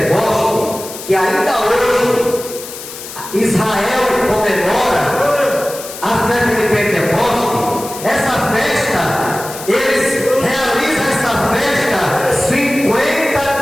que ainda hoje Israel comemora, a festa de Pentecoste, essa festa, eles realizam essa festa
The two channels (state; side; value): noise; left; hiss, 12 dB below the sound